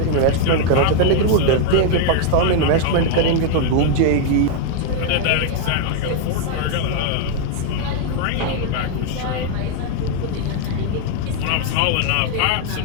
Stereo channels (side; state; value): both; different; correlation 0.00